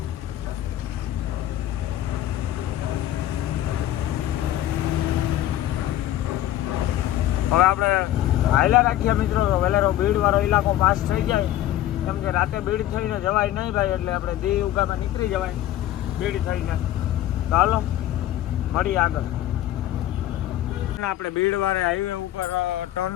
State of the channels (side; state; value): right; quieter; 13.4 dB